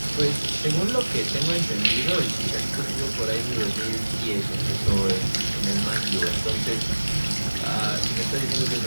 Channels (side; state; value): both; inverted; correlation -1.00